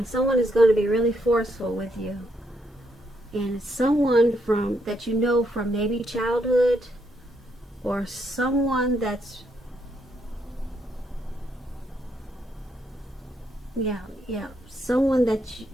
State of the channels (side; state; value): both; normal; correlation 0.76